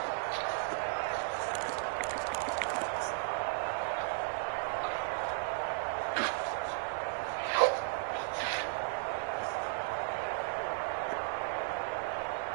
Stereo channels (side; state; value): left; silent; digital silence